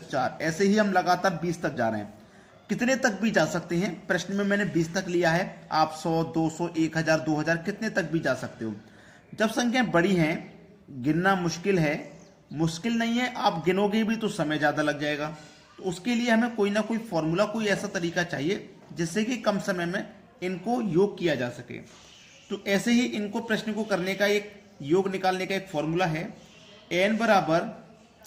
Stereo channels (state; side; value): identical; both; correlation 1.00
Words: 4, ऐसे ही हम लगातार 20 तक जा रहे हैं। कितने तक भी जा सकते हैं? प्रश्न में मैंने 20 तक लिया है। आप 100, 200, 1000, 2000 कितने तक भी जा सकते हो। जब संख्याएं बड़ी हैं, गिनना मुश्किल है, मुश्किल नहीं है, आप गिनोगे भी तो समय ज़्यादा लग जाएगा। तो उसके लिए हमें कोई ना कोई फॉर्मूला, कोई ऐसा तरीका चाहिए जिससे कि कम समय में इनको योग किया जा सके। तो ऐसे ही इनको प्रश्न को करने का एक योग निकालने का एक फॉर्मूला है, n बराबर